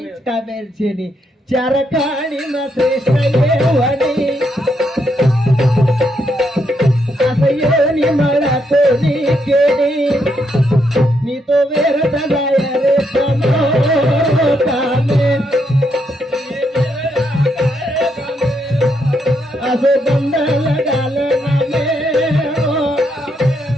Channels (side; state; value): both; normal; correlation 0.78